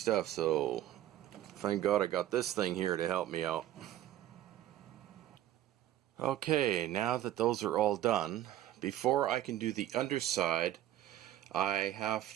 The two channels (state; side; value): quieter; left; 13.1 dB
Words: so thank God I got this thing here to help me out. Okay, now that those are all done, before I can do the underside, I have